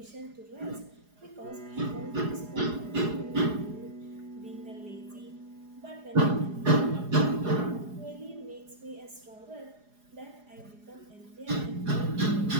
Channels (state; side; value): late; left; 4.8 ms